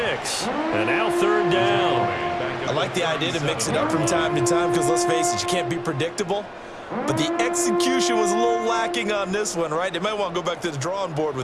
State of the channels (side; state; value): both; identical; correlation 1.00